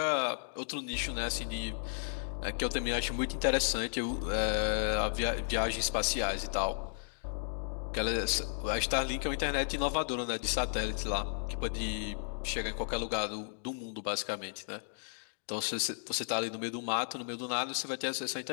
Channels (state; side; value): silent; right; digital silence